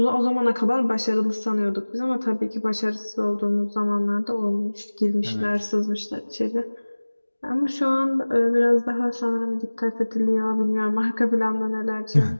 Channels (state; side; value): inverted; both; correlation -1.00